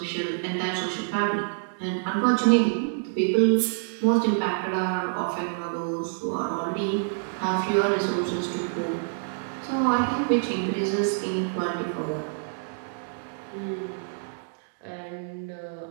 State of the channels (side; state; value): left; silent; digital silence